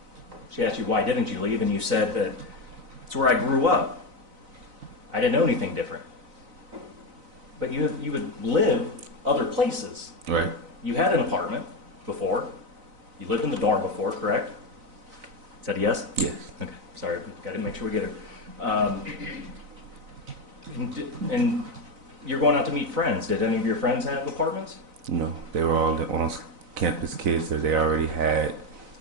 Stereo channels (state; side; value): late; left; 4.0 ms